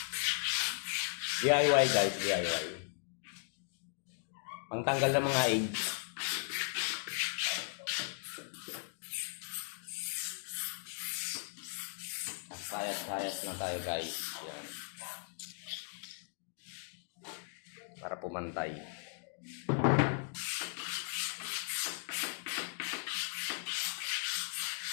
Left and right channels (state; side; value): silent; right; digital silence